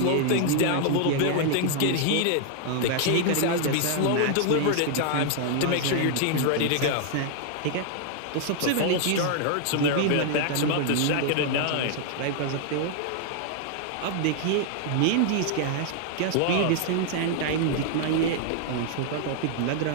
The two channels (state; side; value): different; both; correlation 0.00